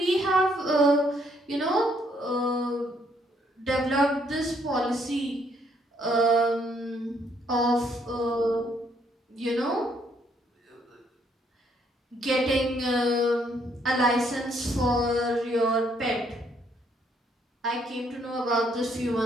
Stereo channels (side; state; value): both; normal; correlation 0.69